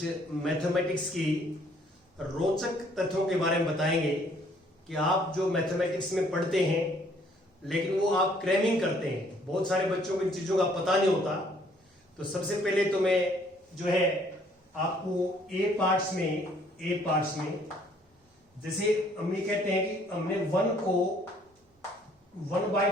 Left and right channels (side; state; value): both; normal; correlation 0.62